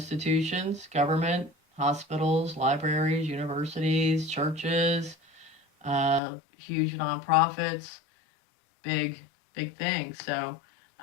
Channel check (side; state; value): right; drops out; at 6.2 s